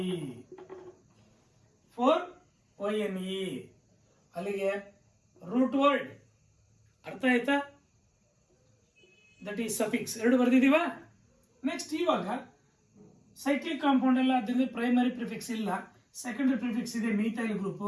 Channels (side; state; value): both; identical; correlation 1.00